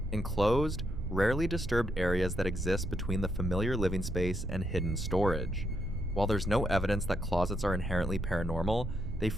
enclosed, rarely disturbed areas that exist between the familiar living space and hidden storage. While there's no evidence that closets are inherently paranormal, they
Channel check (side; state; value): right; noise; rumble, 5 dB below the sound